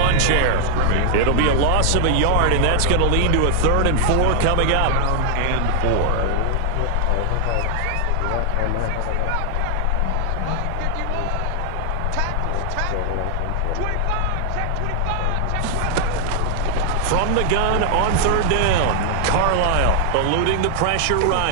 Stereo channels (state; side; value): different; both; correlation 0.00